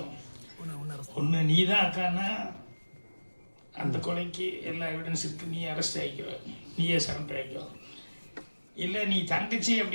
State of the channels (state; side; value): inverted; both; correlation -1.00